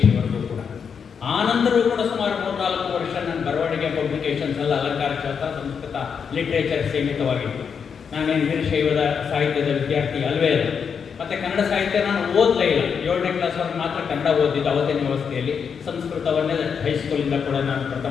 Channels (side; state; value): right; quieter; 6.6 dB